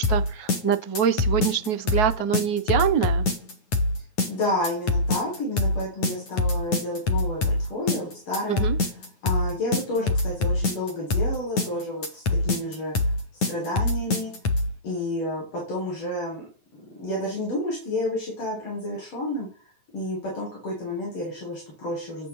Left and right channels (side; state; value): right; late; 9.3 ms